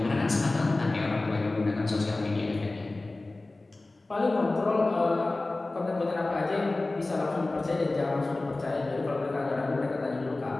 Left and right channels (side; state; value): right; quieter; 3.1 dB